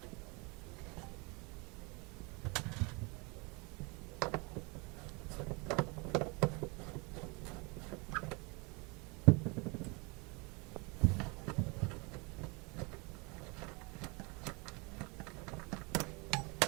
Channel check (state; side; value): quieter; left; 29.2 dB